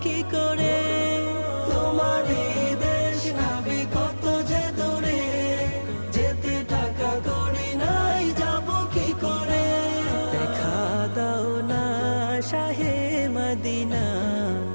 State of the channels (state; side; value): inverted; both; correlation -1.00